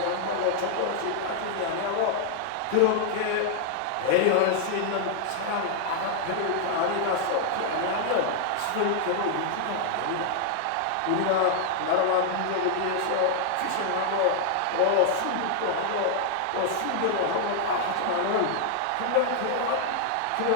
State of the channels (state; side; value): different; both; correlation 0.00